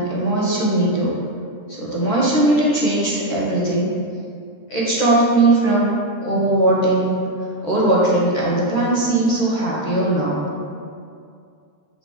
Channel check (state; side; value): late; right; 13 ms